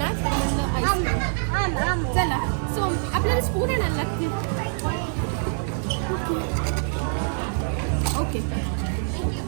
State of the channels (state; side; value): silent; left; digital silence